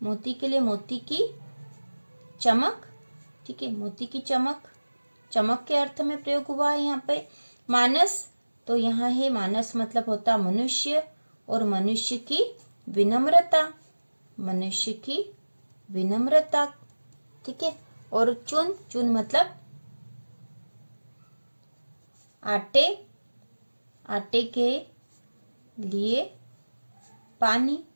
मोती के लिए मोती की चमक, ठीक है, मोती की चमक, चमक के अर्थ में प्रयोग हुआ है यहाँ पे। मानस, तो यहाँ है मानस मतलब होता मनुष्य, और मनुष्य की विनम्रता, मनुष्य की विनम्रता, ठीक है। और चून, चून मतलब आटे, आटे के लिए पानी,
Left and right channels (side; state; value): both; inverted; correlation -1.00